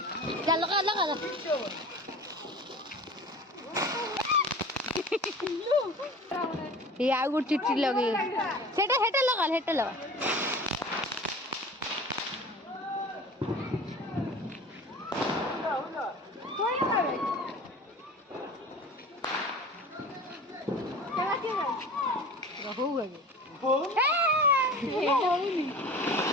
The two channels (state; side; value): normal; both; correlation 0.39